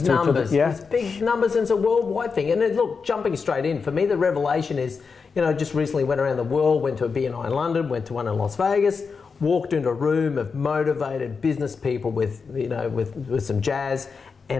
Big numbers. Yeah. It's big numbers, and it's a worldwide thing. And then, look, jumping straight in, for me, the revelation is, you know, just recently went around the world, went to a BNI in London, went to one in Las Vegas, walked into a room of motivated business people with, you know, with some jazz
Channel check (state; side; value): quieter; right; 5.2 dB